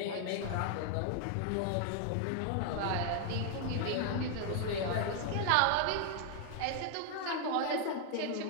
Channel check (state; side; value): different; both; correlation 0.00